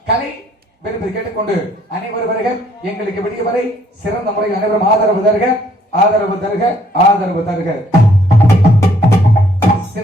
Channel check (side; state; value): both; normal; correlation 0.65